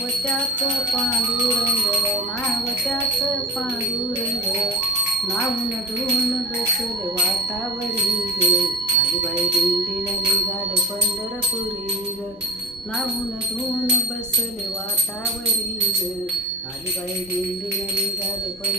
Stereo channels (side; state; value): both; normal; correlation 0.31